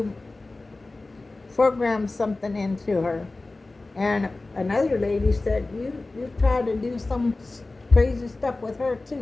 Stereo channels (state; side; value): quieter; right; 3.2 dB